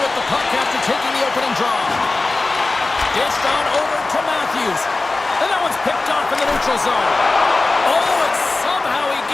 with the puck after taking the opening draw. Dished on over to Matthews, and that one's picked off in the neutral zone. Oh, and somehow he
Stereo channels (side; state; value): right; quieter; 3.4 dB